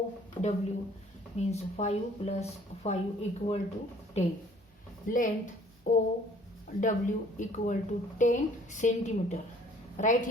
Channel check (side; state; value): both; normal; correlation 0.56